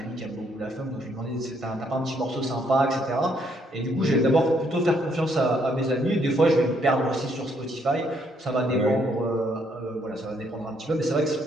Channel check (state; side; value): normal; both; correlation 0.71